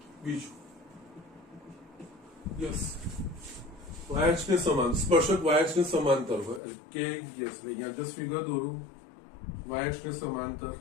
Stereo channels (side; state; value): right; drops out; at 6.6 s